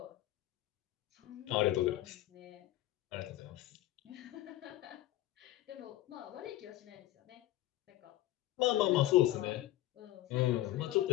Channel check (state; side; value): quieter; right; 15.3 dB